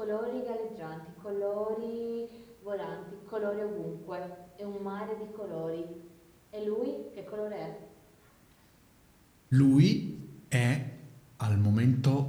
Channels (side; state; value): both; identical; correlation 1.00